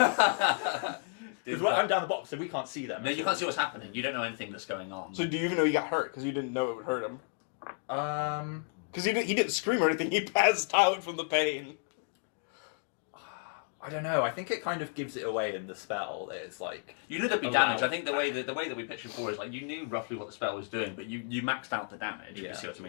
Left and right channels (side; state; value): right; silent; 56 dB below the other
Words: Did- Because I'm down the bottom, so we can't see them. No, you can't see what's happening. You don't know anything that's going on. So do you even know he got hurt? Because you didn't know it would hurt him. Because he didn't scream or anything. He passed out from the pain. I don't know. I think it kind of gives it away in the spell. It's like You knew there'd be Allow- damage. I think the way that we pitched before is like you knew roughly what the spell was doing, but you maxed out the damage. If you Yeah. see what I